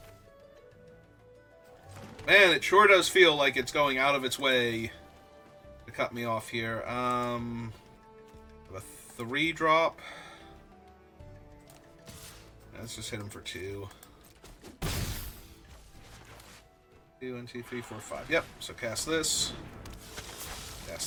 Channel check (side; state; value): both; identical; correlation 1.00